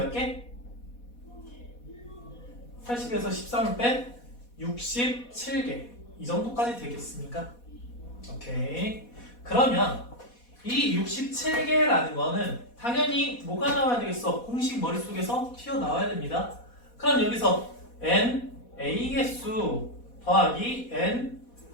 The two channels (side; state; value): right; late; 4.1 ms